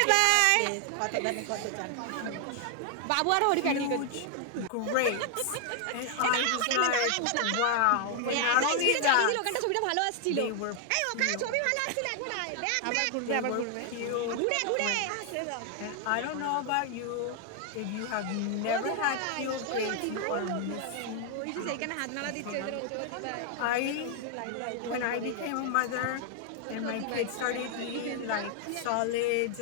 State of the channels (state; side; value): different; both; correlation 0.00